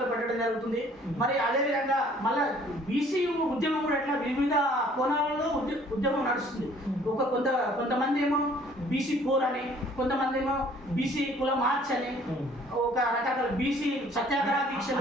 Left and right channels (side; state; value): both; normal; correlation 0.57